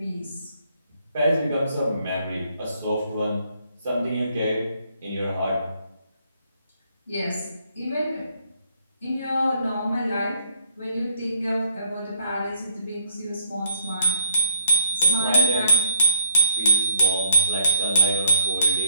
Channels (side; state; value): both; inverted; correlation -0.63